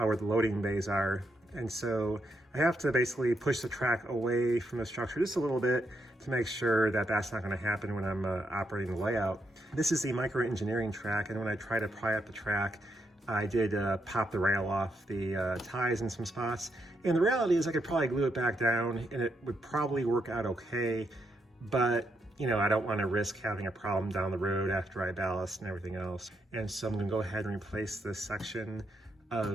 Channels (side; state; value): both; normal; correlation 0.80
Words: the loading bays are. And so I have to basically push the track away from the structure just a little bit to make sure that that's not going to happen when I'm operating the layout. This is the micro-engineering track, and when I try to pry up the track, I did pop the rail off the ties in some spots. And the reality is I could probably glue it back down and it would probably work out okay, but you know, I don't want to risk having a problem down the road after I ballast and everything else. And so I'm going to go ahead and replace this section